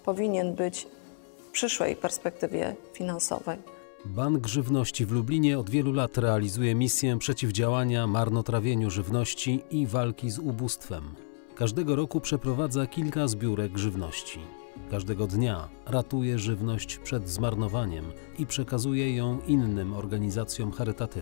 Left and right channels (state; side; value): silent; right; 58 dB below the other